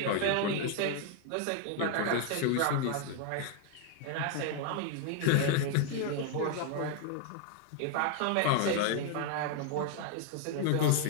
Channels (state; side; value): different; both; correlation 0.00